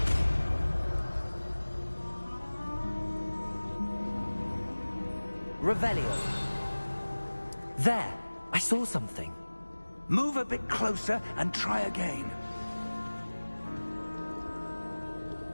Revelio. There! I saw something. Move a bit closer and try again.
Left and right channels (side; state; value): both; inverted; correlation -1.00